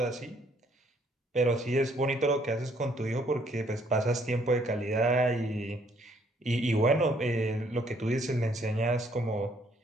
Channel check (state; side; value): normal; both; correlation 0.66